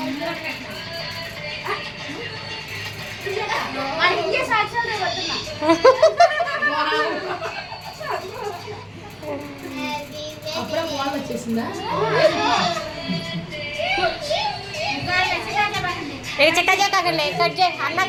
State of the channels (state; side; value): identical; both; correlation 1.00